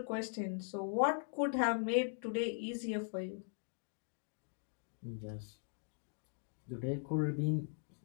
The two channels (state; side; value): silent; right; digital silence